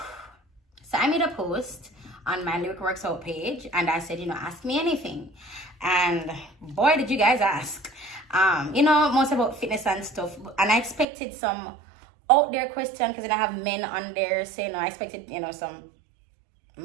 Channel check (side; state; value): left; drops out; at 11.1 s